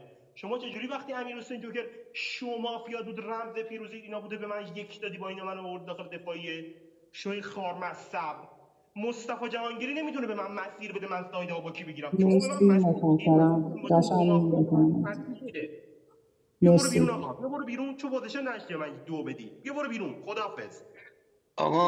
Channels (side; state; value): both; identical; correlation 1.00